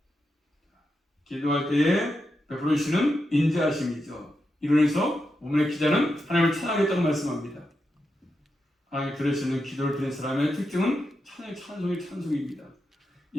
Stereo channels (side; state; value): both; normal; correlation 0.87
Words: 기도할 때에 베풀어주시는 인자하심이죠. 이로 인해서 오늘의 기자는 하나님을 찬양하겠다고 말씀합니다. 하나님 들으시는 기도를 드린 사람의 특징은 찬송입니다.